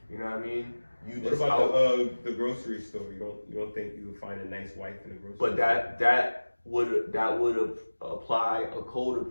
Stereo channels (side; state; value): both; inverted; correlation -1.00